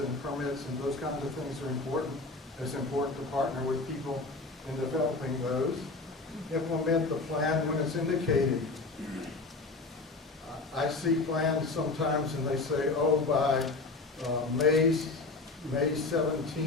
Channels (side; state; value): right; quieter; 3.5 dB